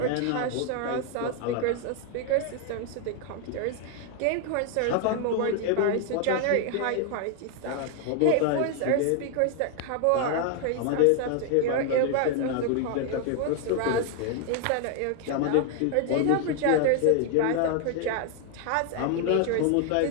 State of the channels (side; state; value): both; different; correlation 0.00